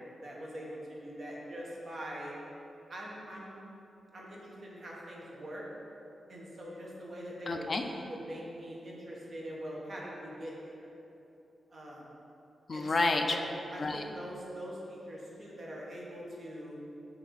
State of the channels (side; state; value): both; normal; correlation 0.89